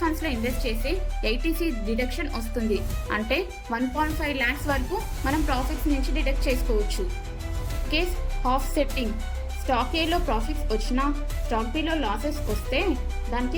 ఫండ్స్లో ఇన్వెస్ట్ చేసి 80C డిడక్షన్ వస్తుంది. అంటే 1.5 lakhs వరకు మనం ప్రాఫిట్స్ నుంచి డిడక్ట్ చేసుకోవచ్చు. కేస్ ఆఫ్ సెట్టింగ్, స్టాక్ ఏలో ప్రాఫిట్స్ వచ్చినా స్టాక్ బిలో లాసెస్ వస్తే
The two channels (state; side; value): identical; both; correlation 1.00